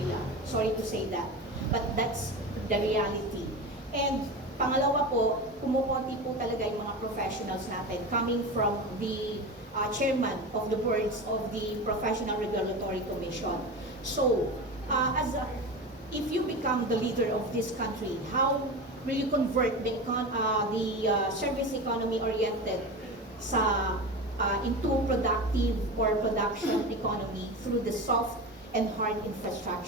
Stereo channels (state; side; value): normal; both; correlation 0.26